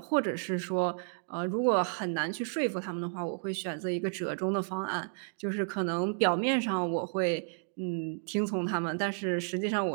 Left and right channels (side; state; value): left; silent; digital silence